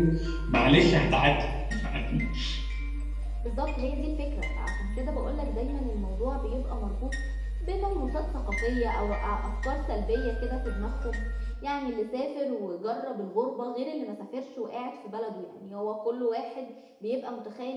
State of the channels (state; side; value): identical; both; correlation 1.00